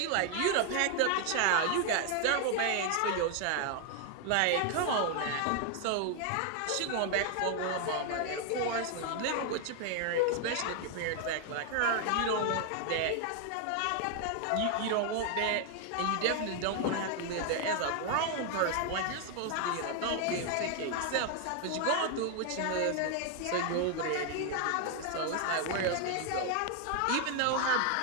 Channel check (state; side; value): different; both; correlation 0.00